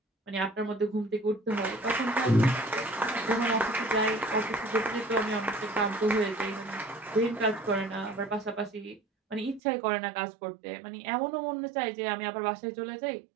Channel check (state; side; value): drops out; left; at 9.6 s